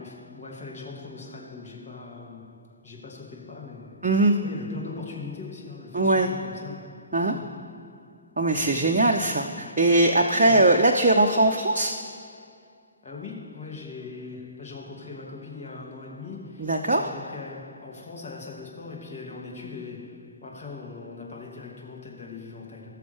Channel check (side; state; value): both; inverted; correlation -0.50